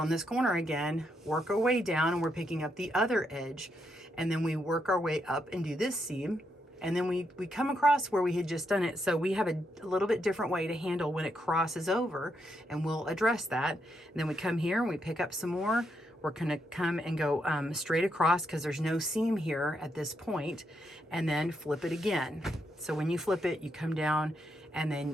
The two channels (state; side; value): normal; both; correlation 0.80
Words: on this corner again, work our way down, and we're picking up the other edge, and then we work our way up and do this seam, and then we come across where we had just done it. So we have a little bit different way to handle when it crosses over, and we'll address that. And then we come here and we pick up some more. We're going to come and go straight across because there's no seam here at this point, and then flip it again. So when you flip it, you come down and